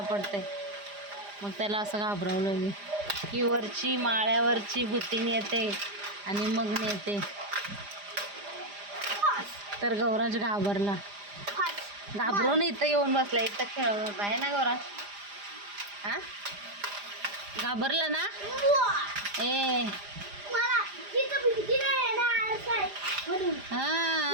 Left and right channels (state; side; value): late; left; 4.9 ms